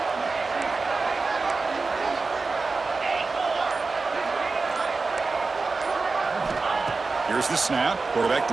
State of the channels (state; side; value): quieter; left; 4.0 dB